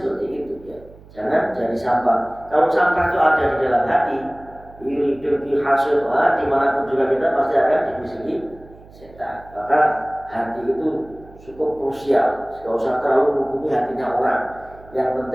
itu ya. Jangan jadi sampah. Kalau sampah itu ada di dalam hati, hidup di hasil, dimanapun juga kita pasti akan dibisiki setan. Maka hati itu cukup krusial. Tidak usah terlalu menghubungi hatinya orang. Yang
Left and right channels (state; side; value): noise; right; hum, 22 dB below the sound